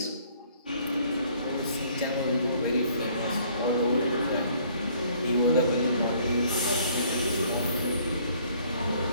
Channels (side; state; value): both; inverted; correlation -0.60